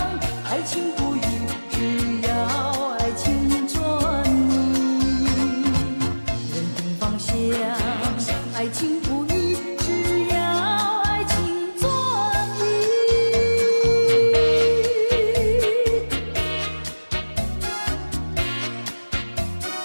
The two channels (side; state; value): both; inverted; correlation -1.00